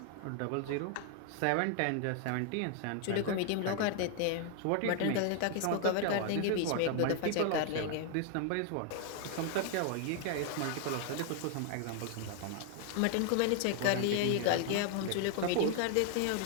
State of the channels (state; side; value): different; both; correlation 0.01